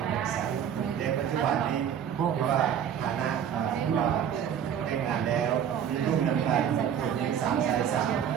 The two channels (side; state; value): left; quieter; 8.8 dB